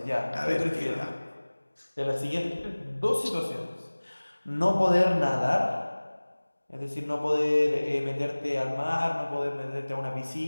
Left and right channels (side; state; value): both; inverted; correlation -1.00